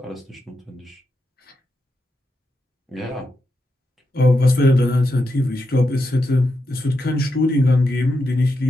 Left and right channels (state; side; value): normal; both; correlation 0.85